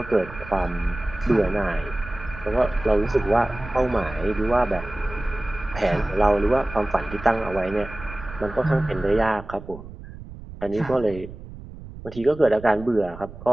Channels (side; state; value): right; noise; rumble, 14 dB below the sound